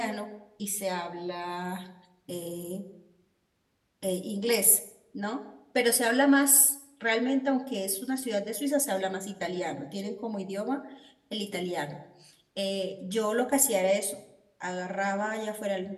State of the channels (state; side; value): identical; both; correlation 1.00